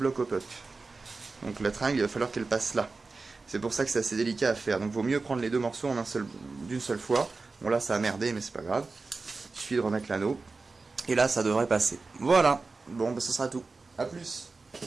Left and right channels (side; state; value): left; quieter; 3.9 dB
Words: au puck. Donc la tringle, il va falloir qu'elle passe là. C'est pour ça que c'est assez délicat à faire. Donc vaut mieux prendre les deux morceaux d'une seule fois. Bon là ça a merdé mais c'est pas grave. Il suffit de remettre l'anneau. Et là ça devrait passer. Voilà. Bon bah ce sera tout. A plus.